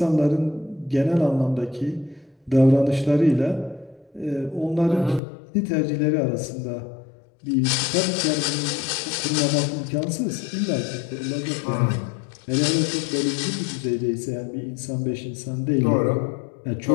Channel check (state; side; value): drops out; right; at 5.2 s